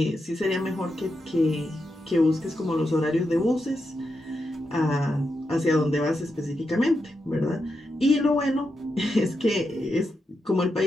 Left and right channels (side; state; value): both; normal; correlation 0.86